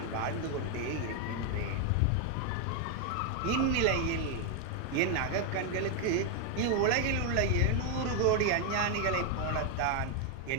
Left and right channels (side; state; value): both; different; correlation 0.01